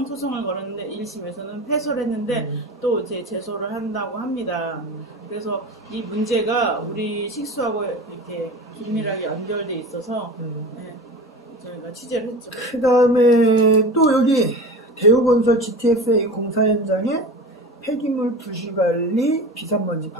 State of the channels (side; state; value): both; normal; correlation 0.32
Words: 소송을 걸었는데 1심에서는 패소를 했는데 또 이제 제소를 한다고 합니다. 그래서 이 문제가 우리 식수하고 이렇게 긴밀하게 연결돼 있어서 저희가 취재를 했죠. 그 다음에 또 여기 대우건설 GTSA 공사 현장에 폐기물 부실관리 비산먼지